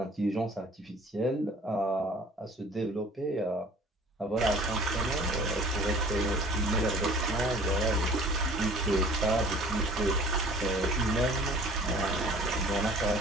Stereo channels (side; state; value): both; normal; correlation 0.48